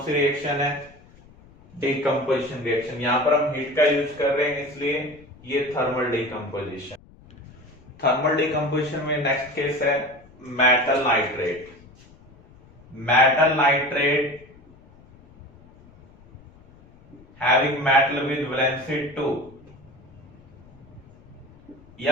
सी रिएक्शन है, डिकम्पोजिशन रिएक्शन। यहां पर हम हीट का यूज कर रहे हैं इसलिए ये थर्मल डिकम्पोजिशन। थर्मल डिकम्पोजिशन में नेक्स्ट केस है metal nitrate. Metal nitrate having metal with valency 2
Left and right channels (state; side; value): noise; left; rumble, 25 dB below the sound